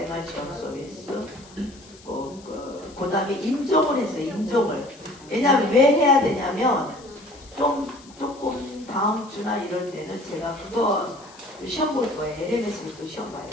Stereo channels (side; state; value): left; noise; hiss, 23 dB below the sound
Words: 지원 서비스 그 다음에 임종을 했어요. 임종을. 왜냐하면 왜 해야 되냐면 조금 다음 주나 이럴 때는 제가 그거 시험 볼 거예요. LMS를 또 시험 봐야